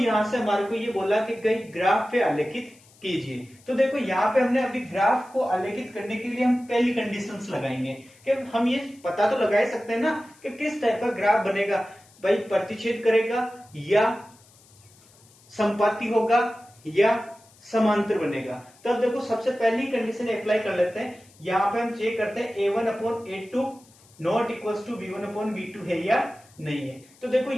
से हमारे को ये बोला कि कई ग्राफ पे आलेखित कीजिए। तो देखो यहाँ पे हमने अभी ग्राफ को आलेखित करने के लिए हम पहली कंडीशंस लगाएंगे कि हम ये पता तो लगा ही सकते हैं ना कि किस टाइप का ग्राफ बनेगा, भाई प्रतिच्छेद करेगा या संपाती होगा या समांतर बनेगा। तब देखो सबसे पहली कंडीशन अप्लाई कर लेते हैं। यहाँ पे हम चेक करते हैं a1/a2 not equals to b1/b2 है या नहीं है। तो देखो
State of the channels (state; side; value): noise; left; hiss, 28 dB below the sound